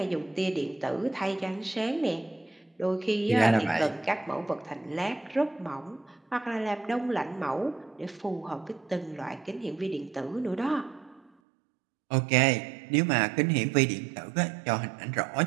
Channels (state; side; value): drops out; left; at 11.3 s